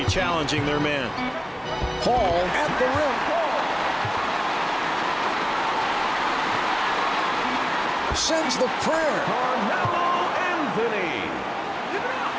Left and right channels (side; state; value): both; identical; correlation 1.00